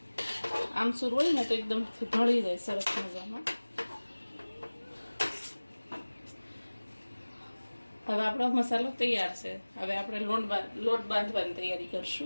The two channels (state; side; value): inverted; both; correlation -1.00